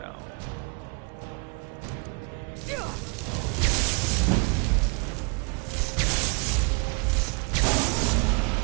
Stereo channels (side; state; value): left; quieter; 32.6 dB